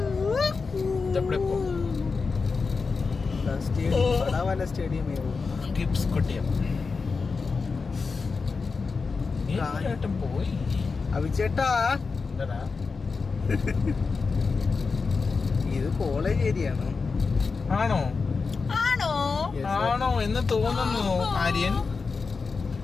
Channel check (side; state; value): right; quieter; 4.6 dB